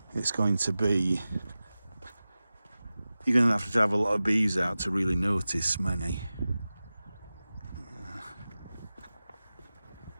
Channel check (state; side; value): inverted; both; correlation -0.96